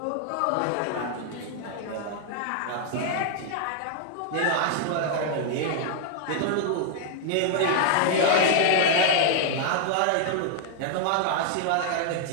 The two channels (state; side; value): different; both; correlation 0.00